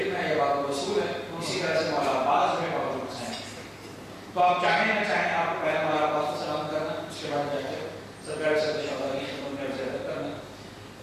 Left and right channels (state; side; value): identical; both; correlation 1.00